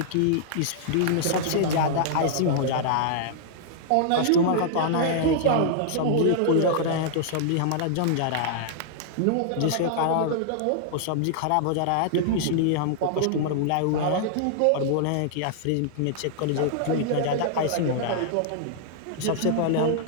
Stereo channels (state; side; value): different; both; correlation -0.01